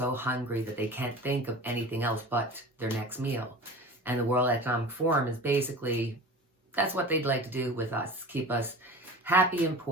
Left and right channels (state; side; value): normal; both; correlation 0.36